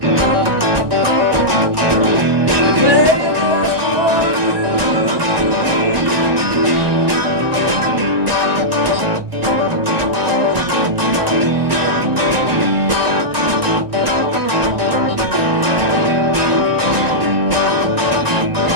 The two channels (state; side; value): late; left; 1.2 ms